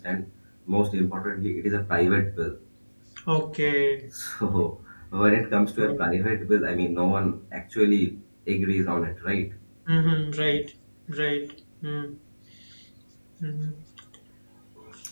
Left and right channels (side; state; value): both; inverted; correlation -1.00